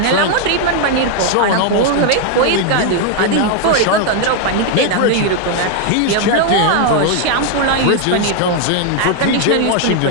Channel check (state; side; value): different; both; correlation 0.01